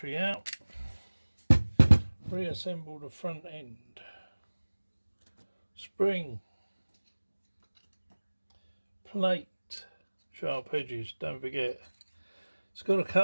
out. Reassemble the front end. Spring. Plate. Sharp edges, don't forget. It's got a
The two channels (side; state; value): both; inverted; correlation -1.00